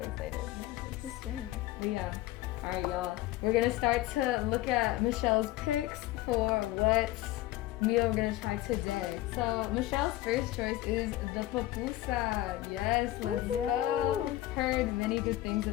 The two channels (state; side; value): quieter; right; 16.1 dB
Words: The same. But yeah. Alright y'all. We're gonna start to look at Michelle's picks for what meal we're gonna try today. So Michelle's first choice is the pupusa. Yes, let's go. Heard many good things